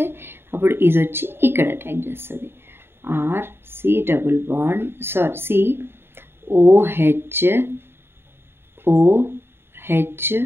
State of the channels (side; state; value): left; late; 0.11 ms